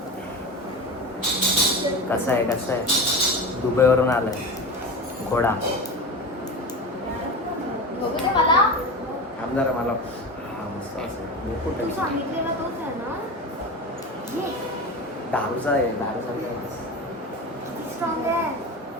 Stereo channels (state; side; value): normal; both; correlation 0.27